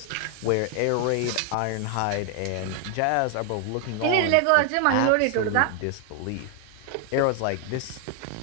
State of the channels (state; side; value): different; both; correlation 0.00